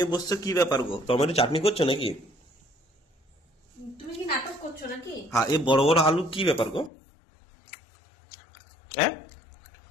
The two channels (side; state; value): right; drops out; at 6.9 s